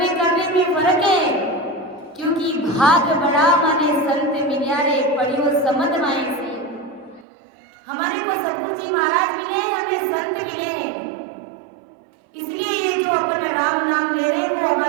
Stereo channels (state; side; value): drops out; left; at 7.2 s